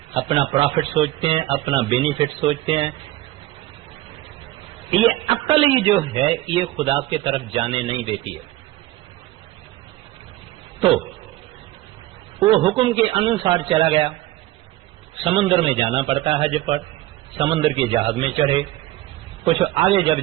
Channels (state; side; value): quieter; left; 16.4 dB